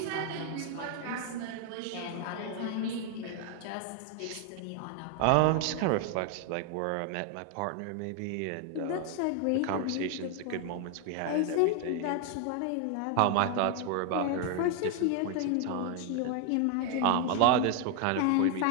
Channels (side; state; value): both; different; correlation 0.00